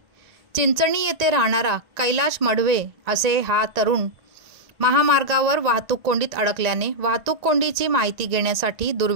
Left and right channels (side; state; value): left; late; 1.9 ms